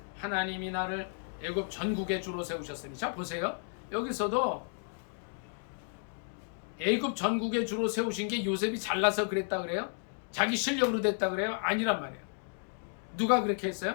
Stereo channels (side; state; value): right; silent; 56 dB below the other